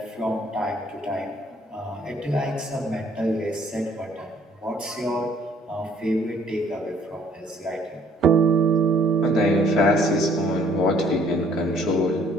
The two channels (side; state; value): both; normal; correlation 0.60